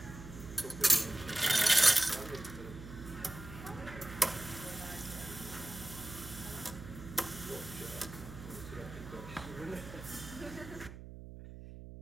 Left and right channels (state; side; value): noise; right; hum, 12 dB below the sound